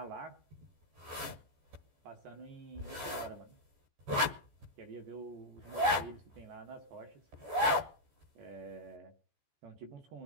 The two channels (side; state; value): left; late; 14 ms